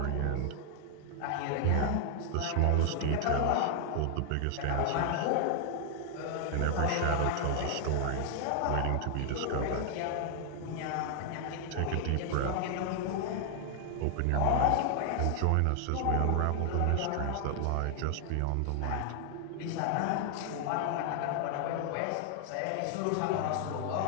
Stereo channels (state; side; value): different; both; correlation 0.00